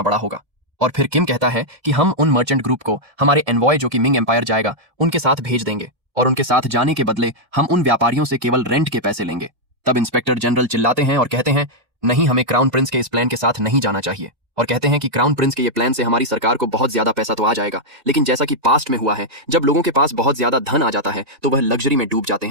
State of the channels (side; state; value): left; late; 1.8 ms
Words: बड़ा होगा। और फिर किम कहता है कि हम उन मर्चेंट ग्रुप को हमारे एनवॉय जो कि मिंग एम्पायर जाएगा उनके साथ भेज देंगे, और उनके साथ जाने के बदले हम उन व्यापारियों से केवल रेंट के पैसे लेंगे। तब इंस्पेक्टर जनरल चिल्लाते हैं और कहते हैं नहीं, हमें क्राउन प्रिंस के इस प्लान के साथ नहीं जाना चाहिए, और कहते हैं कि क्राउन प्रिंस के ये प्लान से हमारी सरकार को बहुत ज्यादा पैसा तो आ जाएगा, लेकिन जैसा कि पास्ट में हुआ है जब लोगों के पास बहुत ज्यादा धन आ जाता है तो वह लग्जरी में डूब जाते